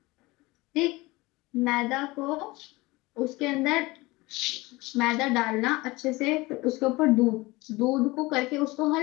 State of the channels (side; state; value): right; quieter; 21.7 dB